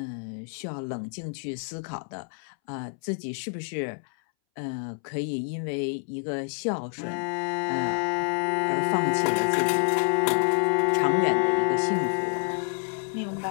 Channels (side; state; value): right; silent; 60 dB below the other